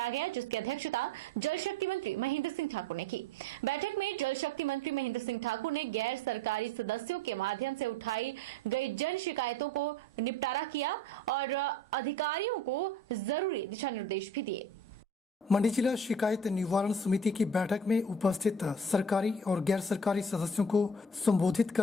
गया, जिसकी अध्यक्षता जल शक्ति मंत्री महेंद्र सिंह ठाकुर ने की। बैठक में जल शक्ति मंत्री महेंद्र सिंह ठाकुर ने गैर सरकारी सदस्यों के माध्यम से उठाई गई जन शिकायतों को निपटारा किया और अधिकारियों को जरूरी दिशा निर्देश भी दिए। मंडी जिला शिकायत निवारण समिति की बैठक में उपस्थित सरकारी और गैर सरकारी सदस्यों को संबोधित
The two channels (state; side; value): normal; both; correlation 0.42